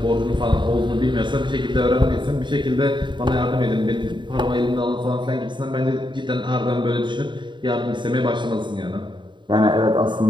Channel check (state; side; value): late; left; 0.23 ms